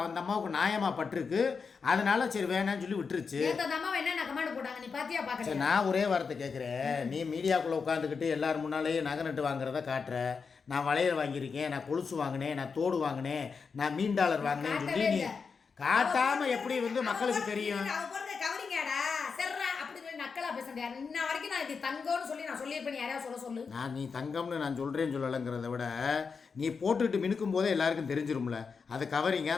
அம்மாவுக்கு நியாயமா பட்டிருக்கு. அதனால சரி வேணான்னு சொல்லி விட்டுருச்சு. சரி, நான் ஒரே வார்த்தை கேட்குறேன், நீ மீடியாக்குள்ளே உட்காந்துக்கிட்டு எல்லாரும் முன்னாலேயே நகை நட்டு வாங்குறத காட்டுற, நான் வளையல் வாங்கியிருக்கேன், நான் கொலுசு வாங்கினேன், நான் தோடு வாங்கினேன், நான் மீன் டாலர் வாங்கினேன்னு சொல்லி நீ காட்டாம எப்படி வந்து மக்களுக்கு தெரியும்? நீ தங்கம்னு நான் சொல்றேன்னு சொல்லலைங்கிறத விட நீ போட்டுட்டு மினுக்கும் போதே எல்லாருக்கும் தெரிஞ்சிரும்ல அது கவரிங்க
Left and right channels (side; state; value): right; quieter; 5.4 dB